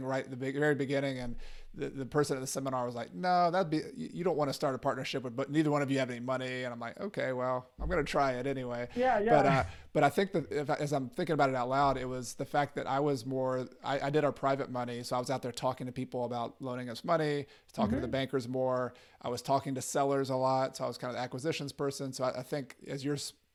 right at the very beginning, and the person at the seminar was like, no, you don't want to start a partnership but neither one of you have any money. And I'm like, okay, well, I'm going to try it anyway. Yeah. But I think that as I'm thinking about it out loud, it was the fact that I did our private money. So I was out there talking to people about loaning us money, talking to the bankers more. I was talking to sellers a lot. So I was kind of the acquisitions person. So I think as you're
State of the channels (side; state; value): both; identical; correlation 1.00